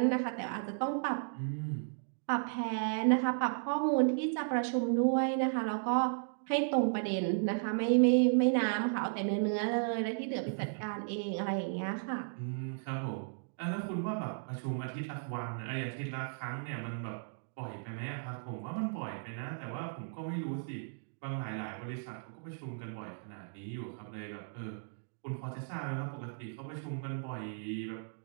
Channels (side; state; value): left; silent; digital silence